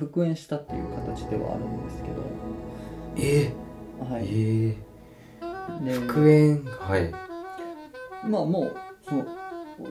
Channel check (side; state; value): both; identical; correlation 1.00